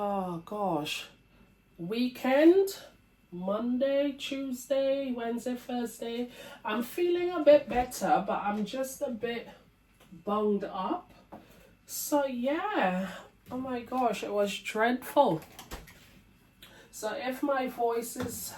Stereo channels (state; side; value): identical; both; correlation 1.00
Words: gosh, weekend, Monday, Tuesday, Wednesday, Thursday. I'm feeling a bit better, but I'm just a bit bunged up. So yeah, oh my gosh, it was dreadful. So if my voice is